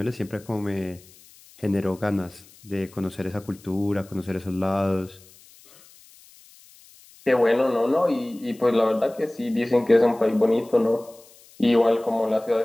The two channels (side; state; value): left; noise; hiss, 25 dB below the sound